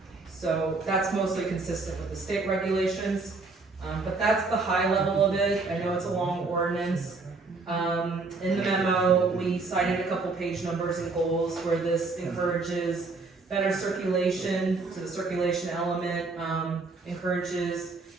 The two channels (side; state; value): left; quieter; 3.8 dB